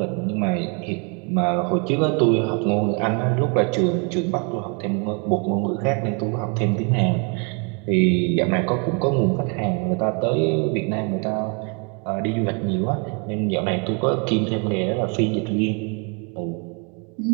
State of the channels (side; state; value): left; quieter; 35.4 dB